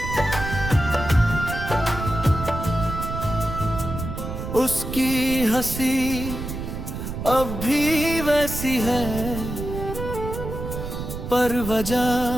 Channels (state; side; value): noise; right; rumble, 6 dB below the sound